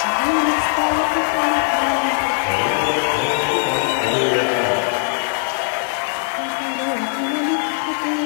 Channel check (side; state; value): right; silent; 66 dB below the other